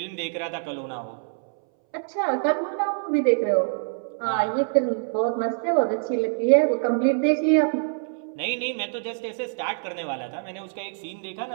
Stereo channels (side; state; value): left; silent; 62 dB below the other